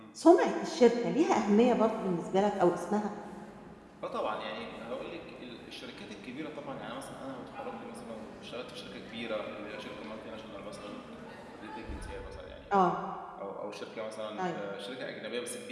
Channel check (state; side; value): identical; both; correlation 1.00